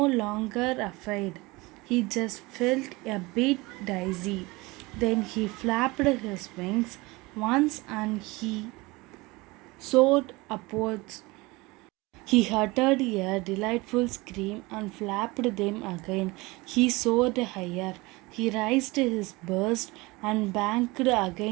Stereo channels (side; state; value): left; quieter; 23.1 dB